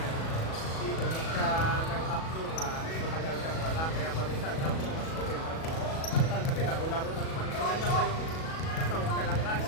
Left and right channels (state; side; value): late; right; 37 ms